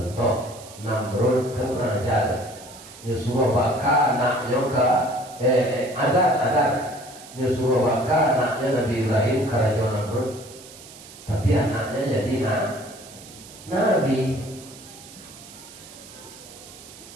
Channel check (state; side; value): noise; right; hiss, 18 dB below the sound